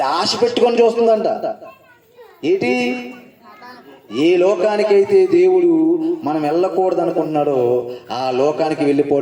ఆశ పెట్టుకొని చూస్తుందంట. ఏంటి? ఏ లోకానికైతే దేవుడు మనం వెళ్ళకూడదు అనుకుంటున్నాడో ఆ లోకానికి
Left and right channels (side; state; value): both; identical; correlation 1.00